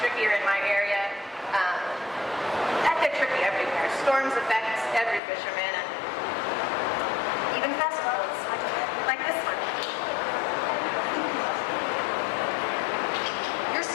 in my area. They're tricky everywhere. Storms affect every fisherman, and even festivals, like this one. You're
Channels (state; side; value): drops out; right; at 5.2 s